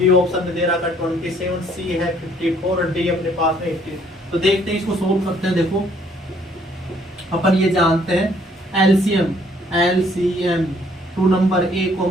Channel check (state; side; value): normal; both; correlation 0.63